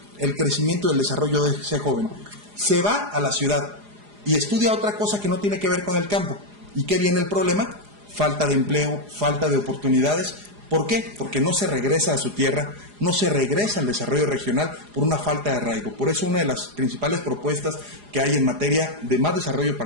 El crecimiento y el desarrollo de ese joven. Se va a la ciudad y estudia otra cosa que no tiene que ver con el campo. ¿Y qué viene el problema? Falta de empleo, falta de oportunidades. ¿Por qué? Porque no se regresa a su tierra, no se regresa al desarrollo regional por una falta de arraigo. Por eso una de las principales propuestas que hay en materia de más desarrollo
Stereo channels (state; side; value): late; left; 4.9 ms